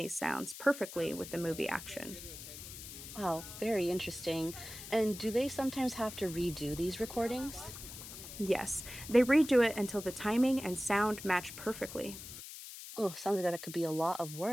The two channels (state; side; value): noise; left; hiss, 12 dB below the sound